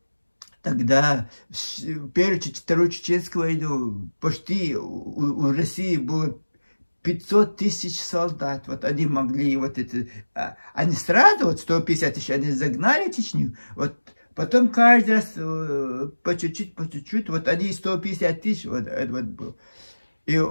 в Первую, Вторую Чеченскую войну почти у России было 500 тысяч солдат. Вот они могли вот это... Они сразу, вот 150 тысяч, они загнали Чечню. Вот потом каждый раз по чуть-чуть, вот они 150 тысяч, вот было. И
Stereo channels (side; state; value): both; inverted; correlation -1.00